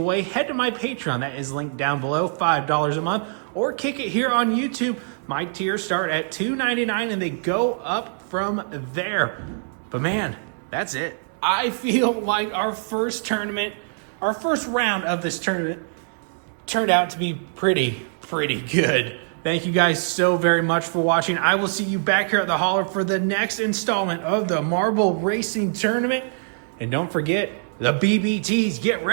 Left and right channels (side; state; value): left; silent; digital silence